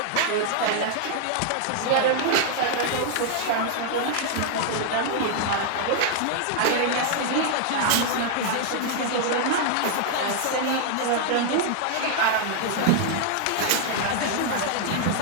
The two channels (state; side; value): different; both; correlation 0.00